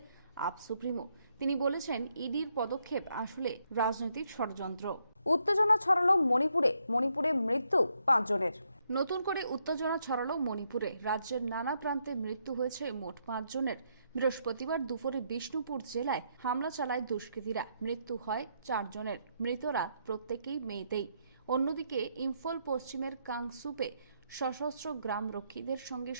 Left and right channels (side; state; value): both; inverted; correlation -0.77